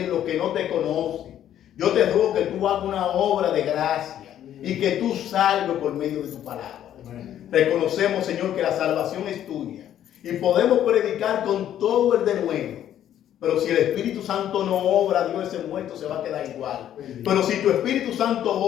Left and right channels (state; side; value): quieter; right; 11.0 dB